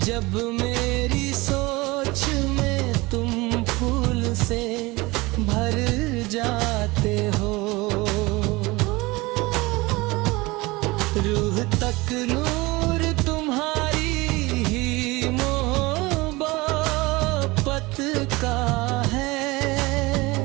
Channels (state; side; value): quieter; left; 22.5 dB